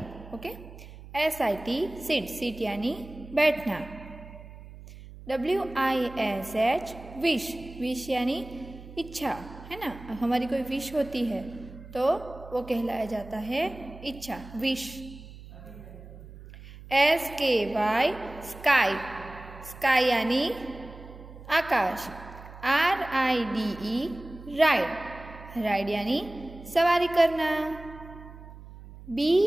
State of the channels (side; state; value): right; noise; hum, 16 dB below the sound